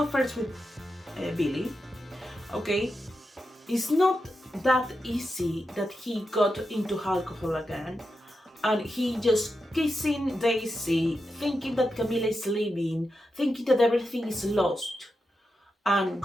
first with Billy. Okay, it's not that easy that he got into alcohol again, and he just kissing Daisy, thinking that Camila is leaving, thinking that everything is lost, and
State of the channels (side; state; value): both; normal; correlation 0.88